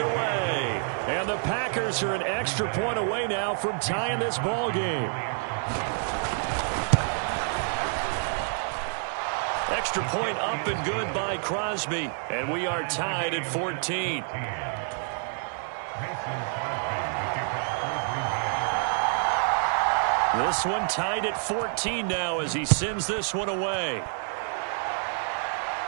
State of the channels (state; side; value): silent; left; 59 dB below the other